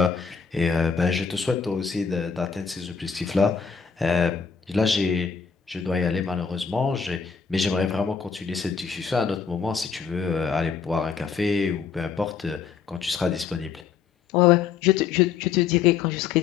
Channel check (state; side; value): quieter; right; 6.2 dB